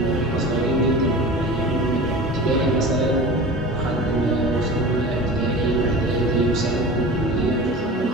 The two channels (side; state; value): both; normal; correlation 0.35